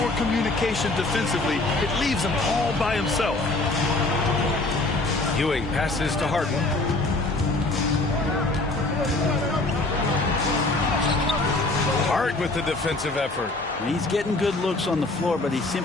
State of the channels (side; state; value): right; quieter; 3.0 dB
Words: communication defensively, it leaves him all by himself. Ewing passes to Harden. Hart with the defensive effort. He's getting good looks on the floor, but he